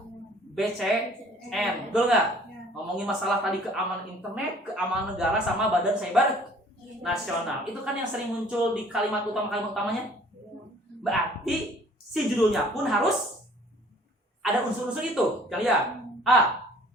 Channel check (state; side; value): normal; both; correlation 0.54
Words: BCN, betul nggak? Ngomongin masalah tadi keamanan internet, keamanan negara sama Badan Cyber Nasional. Itu kan yang sering muncul di kalimat utamanya. Berarti si judulnya pun harus ada unsur-unsur itu. Kita lihat. A.